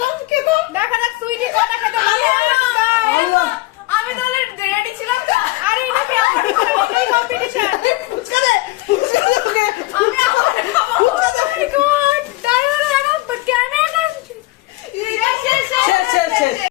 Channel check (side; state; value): right; quieter; 20.0 dB